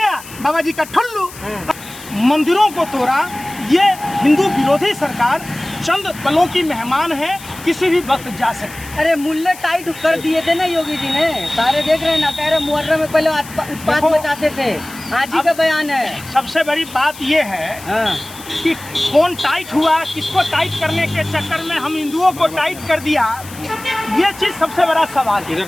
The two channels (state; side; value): noise; left; hiss, 17 dB below the sound